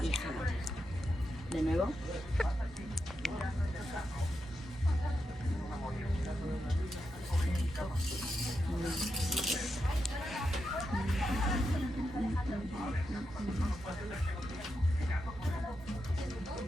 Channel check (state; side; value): normal; both; correlation 0.86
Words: Exhalar. De nuevo.